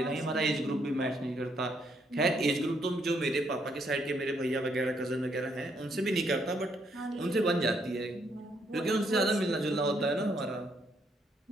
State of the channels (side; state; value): both; normal; correlation 0.72